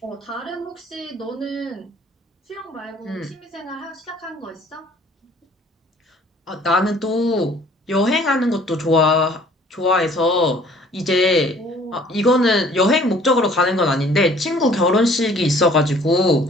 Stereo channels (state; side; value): normal; both; correlation 0.55